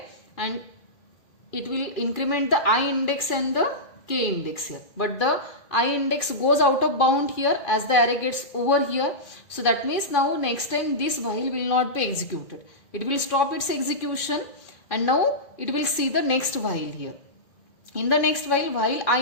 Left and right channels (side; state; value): right; late; 2.4 ms